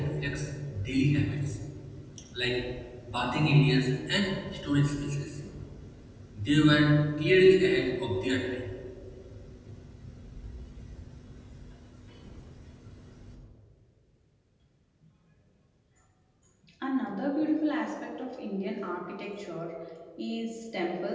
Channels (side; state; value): both; identical; correlation 1.00